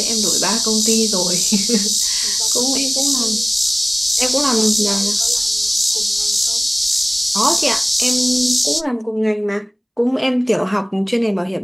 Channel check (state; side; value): identical; both; correlation 1.00